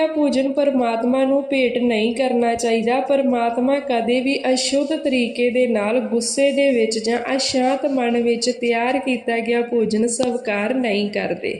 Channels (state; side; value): identical; both; correlation 1.00